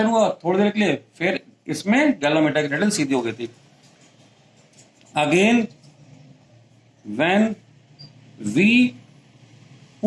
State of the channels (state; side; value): identical; both; correlation 1.00